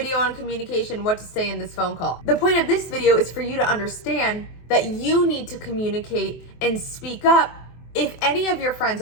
on communication, what to say in this phone call. The point of this video is for you to understand that you need to communicate and speak up if any of your friends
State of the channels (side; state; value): right; late; 23 ms